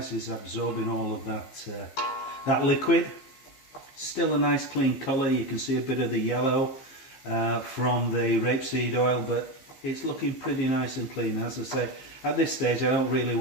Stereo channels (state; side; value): late; right; 15 ms